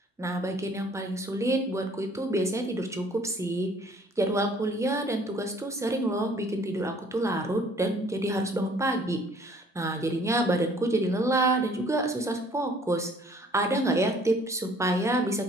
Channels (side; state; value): both; normal; correlation 0.56